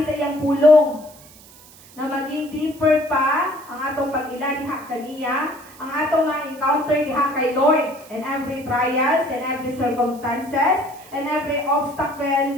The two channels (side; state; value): right; noise; hiss, 22 dB below the sound